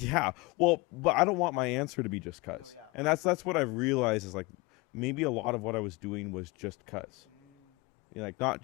but I don't want my answer to be just cuz. No, yeah, and that's what I've realized is like maybe a lot of what I was doing was just cuz. Like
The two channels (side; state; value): right; quieter; 24.3 dB